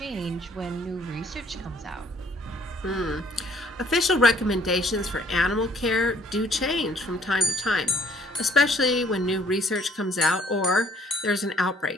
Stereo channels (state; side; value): normal; both; correlation 0.61